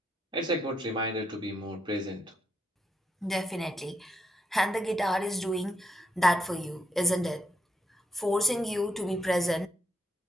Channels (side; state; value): both; normal; correlation 0.79